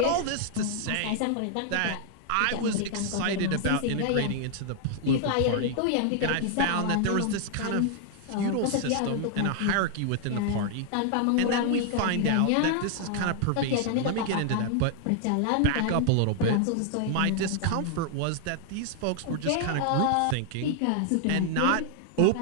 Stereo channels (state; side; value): different; both; correlation 0.00